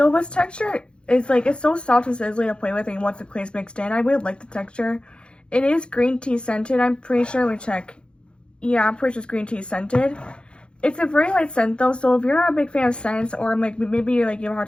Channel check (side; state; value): right; late; 0.055 ms